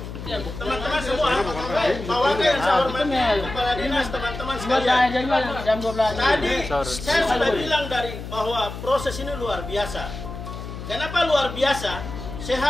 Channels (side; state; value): left; noise; hum, 9 dB below the sound